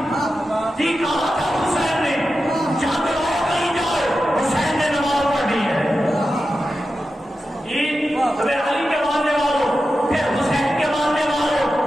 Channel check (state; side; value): normal; both; correlation 0.91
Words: تھی، کہا تھا حسین نے جنگ ہو گئی جائے، حسین نے نماز پڑھنی ہے. تمہیں علی کے ماننے والوں، پھر حسین کے ماننے والوں،